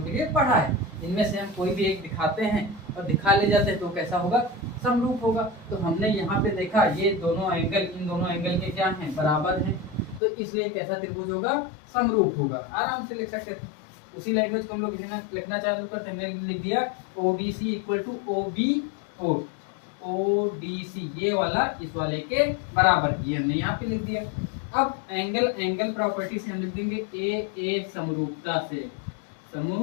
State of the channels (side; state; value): right; drops out; at 10.2 s